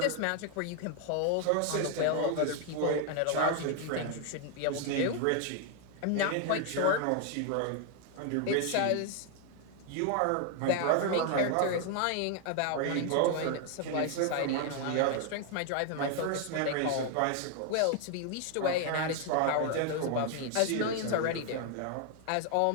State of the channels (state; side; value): different; both; correlation 0.00